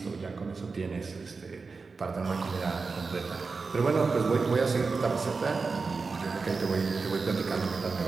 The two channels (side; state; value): left; quieter; 4.4 dB